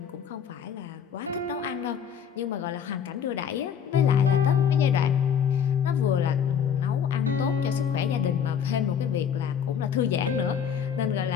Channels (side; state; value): right; quieter; 7.9 dB